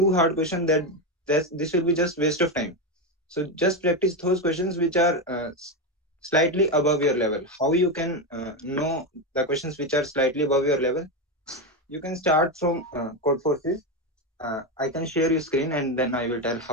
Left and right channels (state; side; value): normal; both; correlation 0.12